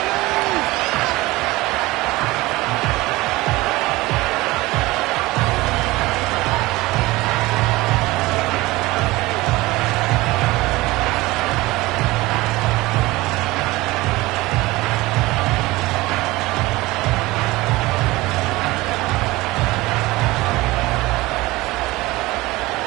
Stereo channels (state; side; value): quieter; left; 20.1 dB